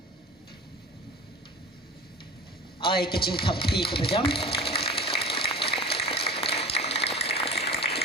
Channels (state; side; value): normal; both; correlation 0.36